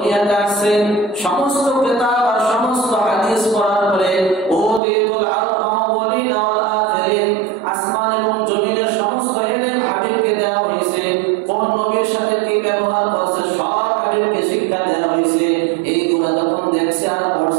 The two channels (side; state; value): left; drops out; at 4.8 s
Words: আসেন, সমস্ত কিতাব আর সমস্ত হাদিস পড়ার পরে ওদিতুল আউয়ালিন ওয়াল আখিরিন, আসমান এবং জমিনের সমস্ত ইলম হাবিবকে দেওয়া হয়েছে। কোন নবীর সাথে কি ব্যবহার করছে সব হাবিবকে শিক্ষা দেওয়া হয়েছে। এইগুলা যখন দেখছে আর